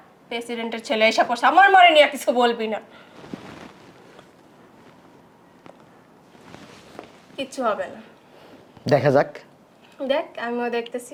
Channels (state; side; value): identical; both; correlation 1.00